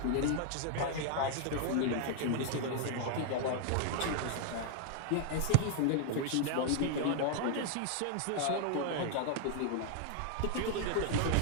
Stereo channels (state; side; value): different; both; correlation 0.00